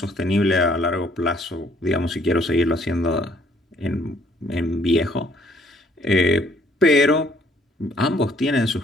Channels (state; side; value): normal; both; correlation 0.63